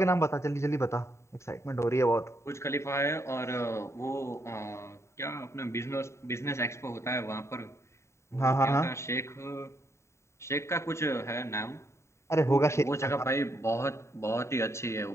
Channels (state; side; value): late; right; 0.14 ms